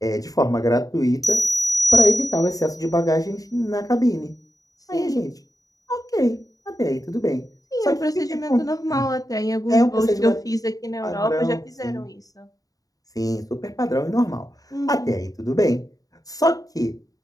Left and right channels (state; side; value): late; right; 0.18 ms